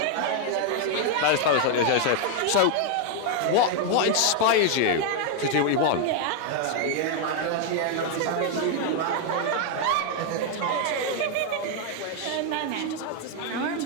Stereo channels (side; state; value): both; different; correlation 0.00